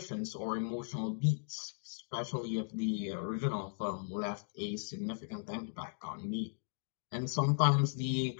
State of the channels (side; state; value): right; silent; digital silence